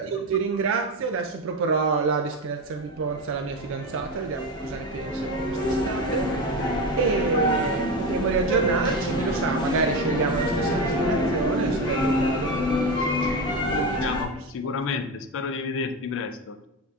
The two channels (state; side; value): normal; both; correlation 0.18